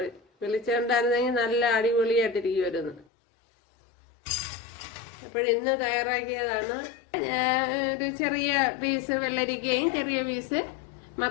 വെളിച്ചം ഉണ്ടായിരുന്നെങ്കിൽ നല്ല അടിപൊളിയായിട്ടിരിക്കുമായിരുന്നു. അപ്പോഴിന്ന് തയ്യാറാക്കിയതാണ് ഒരു ചെറിയ പീസ് വെള്ളരിക്കയും ചെറിയ പീസ്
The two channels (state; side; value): drops out; right; at 3.1 s